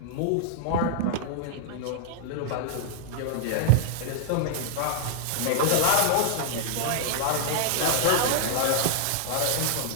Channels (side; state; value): both; different; correlation -0.01